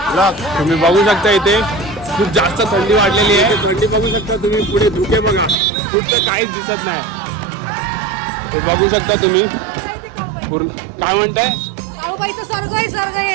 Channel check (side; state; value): left; drops out; at 5.6 s